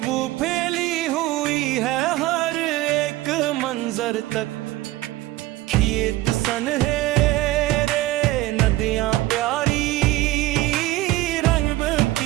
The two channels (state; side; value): quieter; left; 16.9 dB